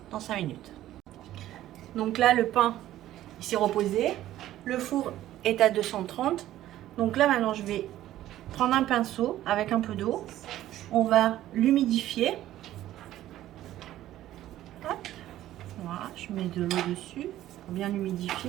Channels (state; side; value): quieter; left; 13.6 dB